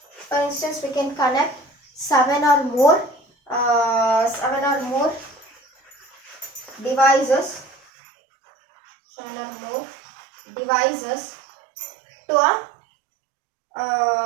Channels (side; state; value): left; drops out; at 7.8 s